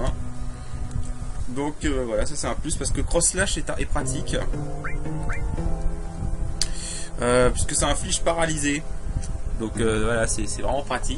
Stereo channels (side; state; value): both; identical; correlation 1.00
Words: Donc voilà, ça c'est un plus parce que Cross Slash est pratique. Puisque ça inflige paralysé. Donc voilà, c'est vraiment